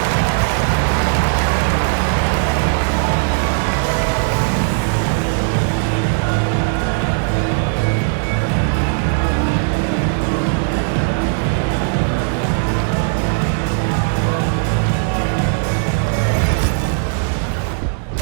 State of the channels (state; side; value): silent; left; 68 dB below the other